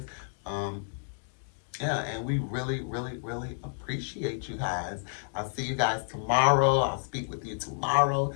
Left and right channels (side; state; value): right; silent; digital silence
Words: Yeah, and we really appreciate you guys. I'll see you guys tomorrow. I'll speak with you tomorrow,